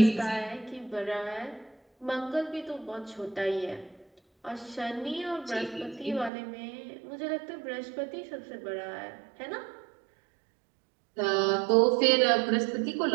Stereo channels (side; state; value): left; drops out; at 6.3 s